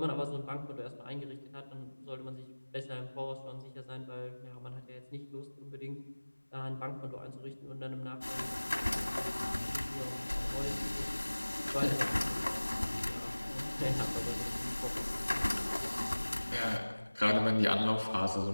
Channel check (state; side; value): inverted; both; correlation -1.00